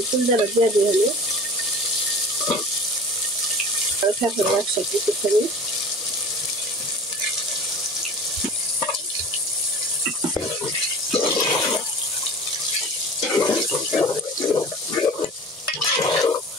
ফুলদারা দিয়ে দিই হলে একসাথে একটুখানি।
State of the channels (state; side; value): normal; both; correlation 0.40